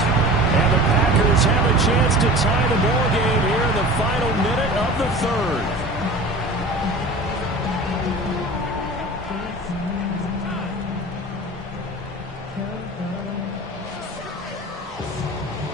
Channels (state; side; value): normal; both; correlation 0.38